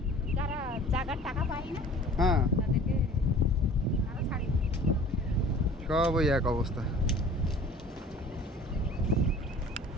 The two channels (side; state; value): both; normal; correlation 0.47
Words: হ্যাঁ, সব ওই এক অবস্থা।